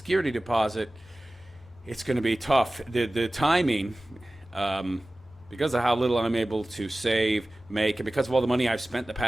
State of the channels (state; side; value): noise; left; hum, 30 dB below the sound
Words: deposit, it's going to be tough. The timing, because of how little I'm able to save, make, and because of all the money I've spent the